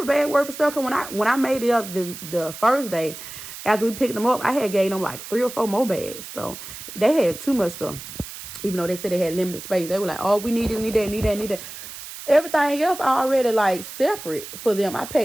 bag worth of stuff. Cause when I made it up the first day, after we picked them up, I had gave them like 3 or 4 more bags. So they had too much stuff. Even though they said they had limited space, they were like, "Oh, we need this, need that." Everything else already like separate for them. I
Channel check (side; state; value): right; noise; hiss, 12 dB below the sound